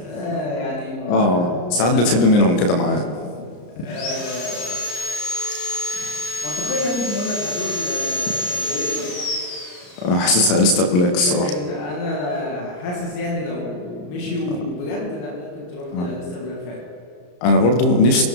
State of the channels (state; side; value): late; right; 34 ms